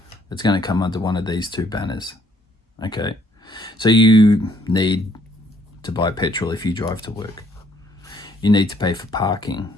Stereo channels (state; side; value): normal; both; correlation 0.66